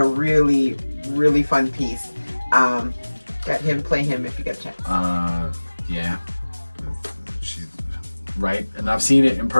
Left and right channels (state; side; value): inverted; both; correlation -1.00